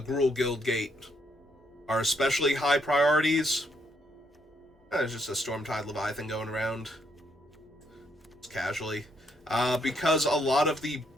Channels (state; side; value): normal; both; correlation 0.74